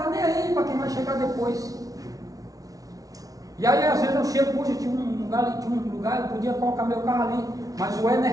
nem aí para quem vai chegar depois. E aí às vezes eu chego, puxa, tinha um lugar, eu podia colocar meu carro ali, mas o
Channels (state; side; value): late; left; 0.18 ms